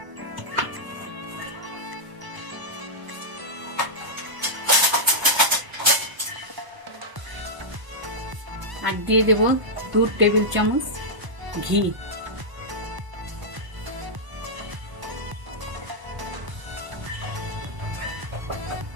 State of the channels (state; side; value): late; left; 1.0 ms